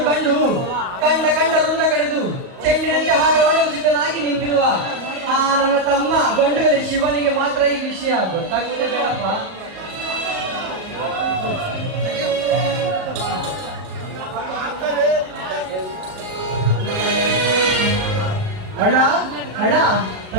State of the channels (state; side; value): late; left; 38 ms